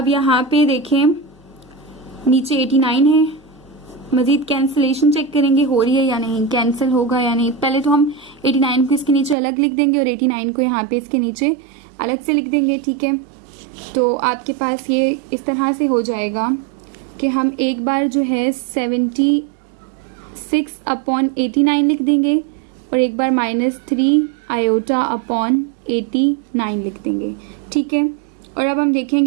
यहाँ पे देखें नीचे 89 है, मजीद कैंसिलेशन चेक करेंगे हो रही है या नहीं, कैंसिल होगा या नहीं। पहले तो हम 89 को इसके नीचे अलग लिख देंगे और 89 को यहाँ पे इसके नीचे अलग से लिख देंगे, ठीक है। तो आपके पास ये इस तरह से हो जाएगा कि हम एक बार जो है 76/89 लिख देंगे और एक बार -3 आयोटा अपॉन 89 लिख देंगे, ठीक है। और अब हम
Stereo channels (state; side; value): drops out; left; at 9.3 s